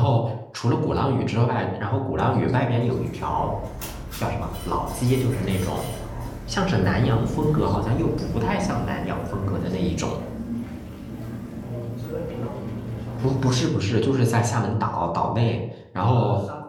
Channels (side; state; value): both; identical; correlation 1.00